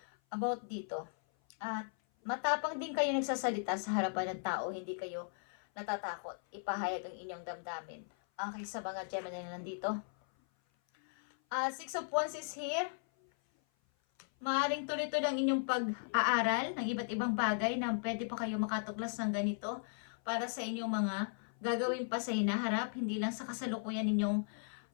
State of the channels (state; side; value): silent; right; 53 dB below the other